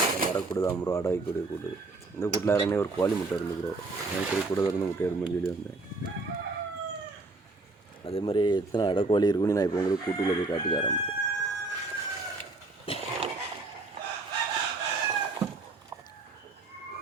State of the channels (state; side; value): quieter; left; 3.4 dB